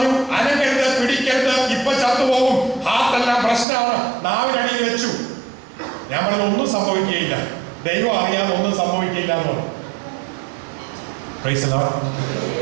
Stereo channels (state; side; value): drops out; left; at 3.7 s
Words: അനങ്ങരുത്, പിടിക്കരുത്, ഇപ്പൊ ചത്തുപോകും, ഹാർട്ടെല്ലാം പ്രശ്നമാണ്, നാവിനടിയിൽ വെച്ചു. ഞാൻ പറഞ്ഞു, ഒന്നും സംഭവിക്കുകയില്ല, ദൈവം അറിയാതെ ഒന്നും സംഭവിക്കില്ല എന്ന് പറഞ്ഞു.